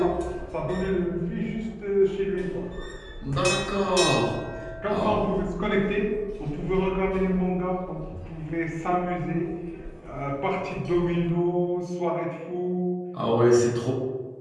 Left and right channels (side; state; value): both; identical; correlation 1.00